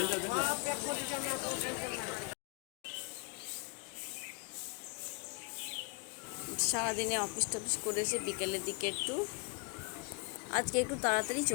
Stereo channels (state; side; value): quieter; right; 31.5 dB